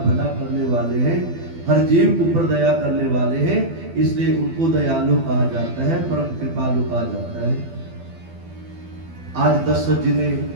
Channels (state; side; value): late; left; 12 ms